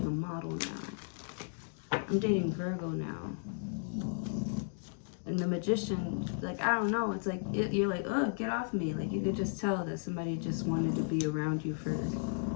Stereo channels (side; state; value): right; silent; digital silence